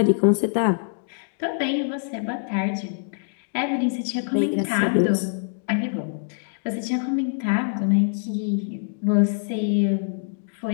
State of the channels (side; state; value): right; silent; digital silence